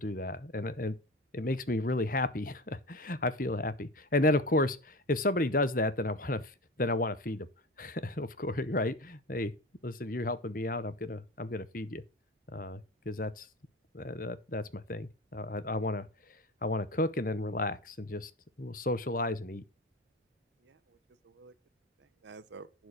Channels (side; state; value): both; normal; correlation 0.29